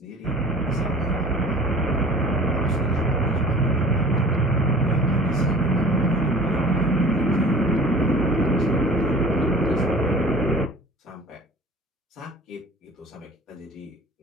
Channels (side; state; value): both; normal; correlation 0.45